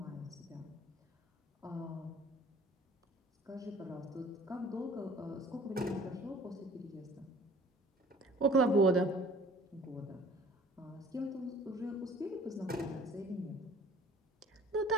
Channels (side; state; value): both; normal; correlation 0.50